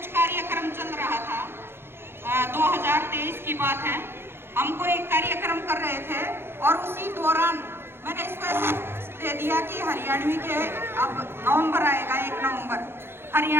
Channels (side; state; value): left; late; 0.11 ms